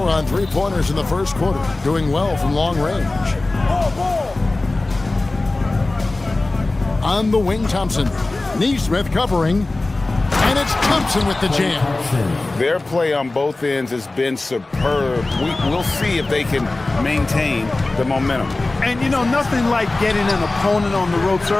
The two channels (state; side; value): quieter; right; 3.1 dB